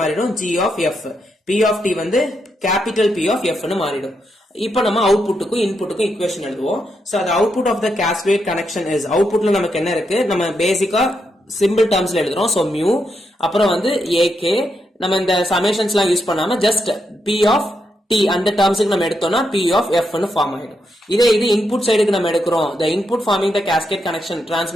மாறிடும்? G of F. P of T வந்து கேபிட்டல் P of F னு மாறிடும். இப்போ நம்ம அவுட்புட்டுக்கும் இன்புட்டுக்கும் ஈக்குவேஷன் எழுதுவோம். So the output of the cascade connection is, அவுட்புட்ல நமக்கு என்ன இருக்கு? நம்ம பேசிக்கா சிம்பிள் டர்ம்ஸ்ல எழுதுறோம். சோ மியூ, அப்புறம் வந்து AK, நம்ம இந்த சமேஷன்ஸ்லாம் யூஸ் பண்ணாம ஜஸ்ட் P of T அந்த டர்ம்ஸ்க்கு நம்ம எடுத்தோம்னா P of F னு ஃபார்ம் ஆயிடும். இதே இது இன்புட் சைடுக்கு நம்ம எடுக்கிறோம். the input forming the cascade connection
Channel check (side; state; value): both; normal; correlation 0.82